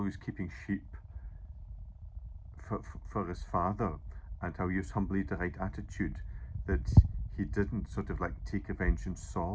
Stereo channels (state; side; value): identical; both; correlation 1.00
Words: he was keeping sheep for his father, and how he was humbly the right attitude, that he didn't sort of like take revenge on